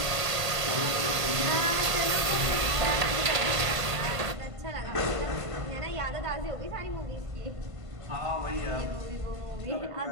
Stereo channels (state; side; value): late; left; 1.5 ms